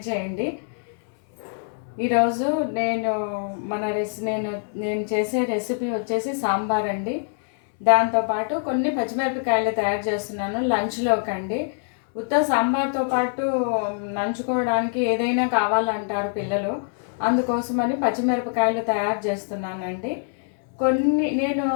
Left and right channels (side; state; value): right; silent; 63 dB below the other